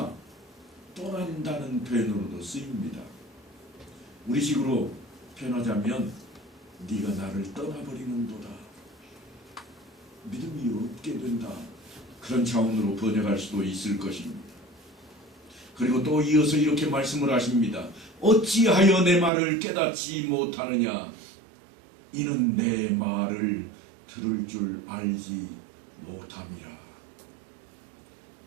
떠난다는 표현으로도 쓰입니다. 우리식으로 표현하자면 네가 나를 떠나버리는도다. 믿음이 없게 된다. 그런 차원으로 번역할 수도 있을 것입니다. 그리고 또 이어서 이렇게 말씀을 하십니다. 어찌하여 내 말을 깨닫지 못하느냐? 이는 내 말을 들을 줄 알지 못함이라.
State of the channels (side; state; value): left; drops out; at 19.3 s